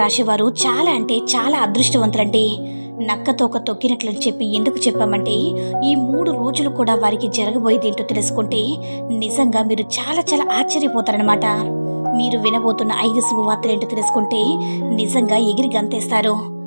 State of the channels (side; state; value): both; inverted; correlation -1.00